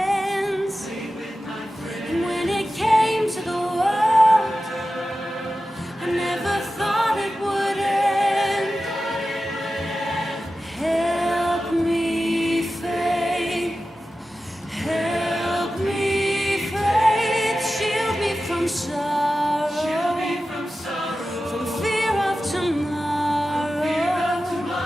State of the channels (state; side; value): normal; both; correlation 0.94